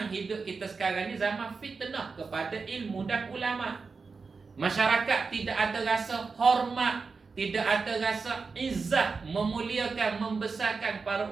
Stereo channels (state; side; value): quieter; left; 4.7 dB